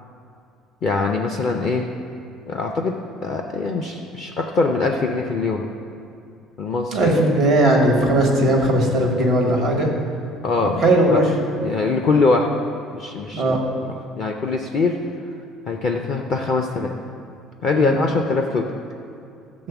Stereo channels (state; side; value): normal; both; correlation 0.53